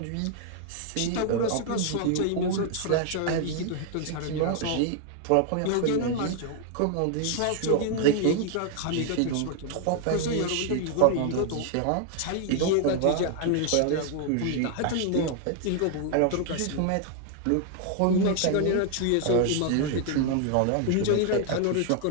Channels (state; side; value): different; both; correlation 0.00